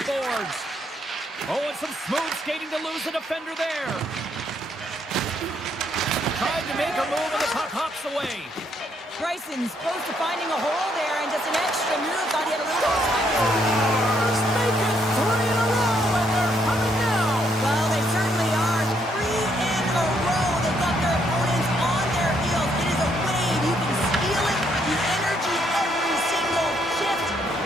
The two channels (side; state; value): both; normal; correlation 0.72